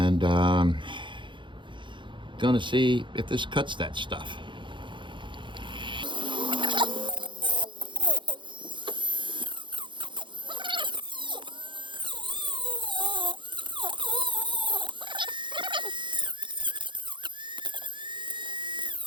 gonna see if this cuts that stuff.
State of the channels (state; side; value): late; left; 0.23 ms